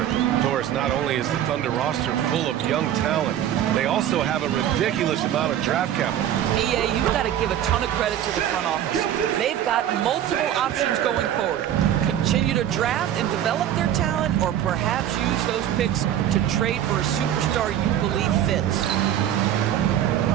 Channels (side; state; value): left; quieter; 10.9 dB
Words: Doris, not only is the Thunder roster full of young talent, they also have a ridiculous amount of draft capital. EA, you've got to give a ton of credit to the front office. They've got multiple options going forward. Continue to draft and develop their talent, or perhaps use those picks to trade for a superstar you believe fits.